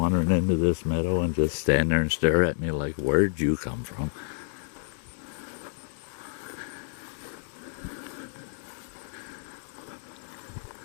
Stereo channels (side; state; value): right; silent; digital silence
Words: into this meadow and just stand there and stare at me like, where'd you come from?